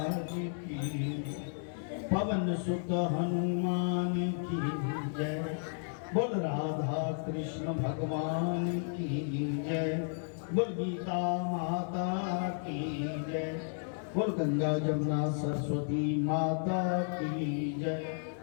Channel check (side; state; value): right; silent; digital silence